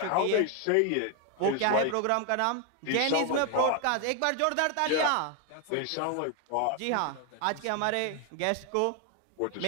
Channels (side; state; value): both; different; correlation 0.01